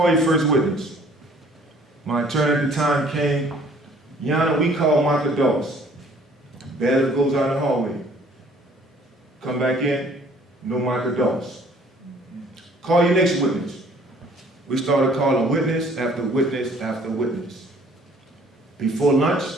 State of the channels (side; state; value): both; normal; correlation 0.57